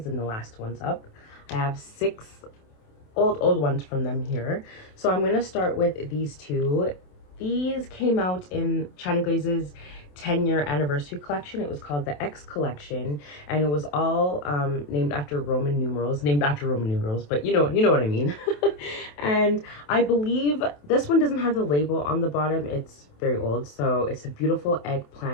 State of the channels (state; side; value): late; right; 27 ms